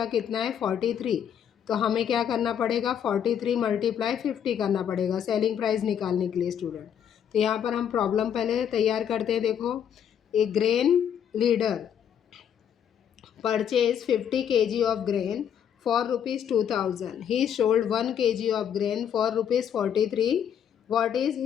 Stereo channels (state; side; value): quieter; right; 8.8 dB